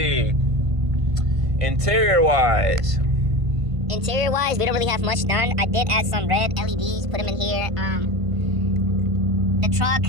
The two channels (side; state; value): left; late; 1.5 ms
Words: Interior wise, we don't really have much done. I did add some red LEDs, put them in here. The truck